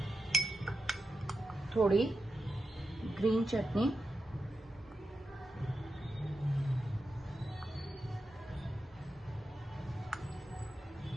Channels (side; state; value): both; normal; correlation 0.89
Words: થોડી ગ્રીન ચટણી,